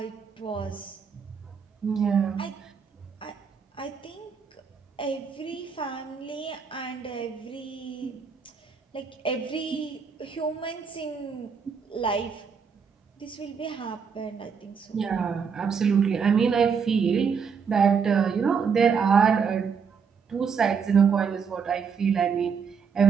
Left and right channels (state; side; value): quieter; left; 6.2 dB